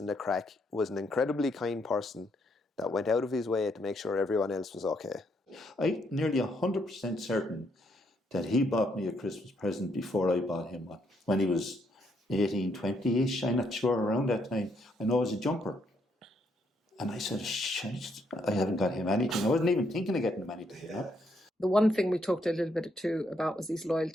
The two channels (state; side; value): normal; both; correlation 0.74